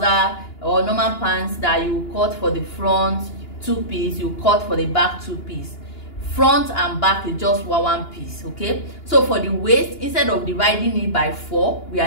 or normal pants that you cut for the front 2-piece, you cut for the back 2-piece. Front and back is just 1 piece. Okay, so for the waist, instead of dividing it by 4, we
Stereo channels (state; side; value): late; right; 2.9 ms